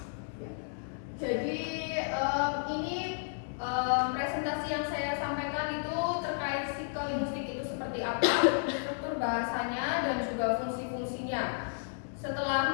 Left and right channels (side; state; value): right; silent; 56 dB below the other